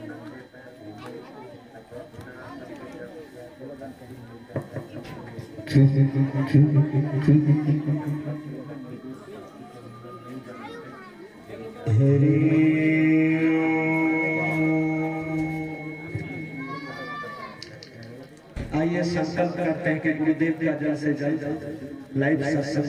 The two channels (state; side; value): identical; both; correlation 1.00